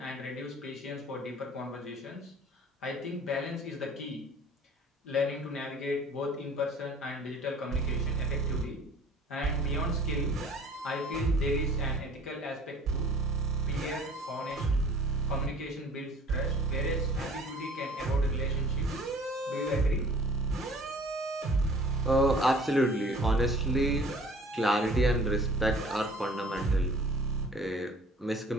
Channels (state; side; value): normal; both; correlation 0.50